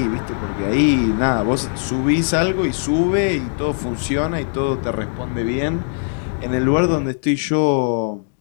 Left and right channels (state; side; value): silent; right; digital silence